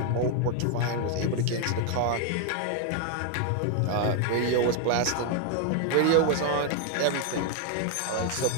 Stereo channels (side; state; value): both; different; correlation 0.00